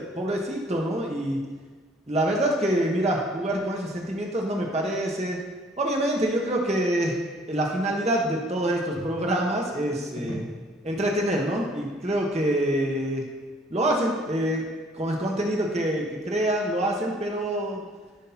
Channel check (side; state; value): both; normal; correlation 0.58